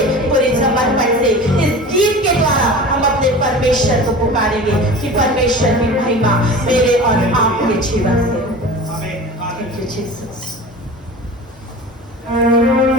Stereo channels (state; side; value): normal; both; correlation 0.36